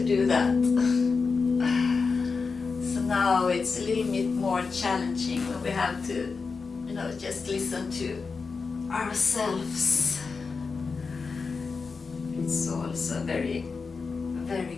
do that. So now it's a little bit more challenging when we have to, just listen to ourselves. It's also very, very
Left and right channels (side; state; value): right; quieter; 4.8 dB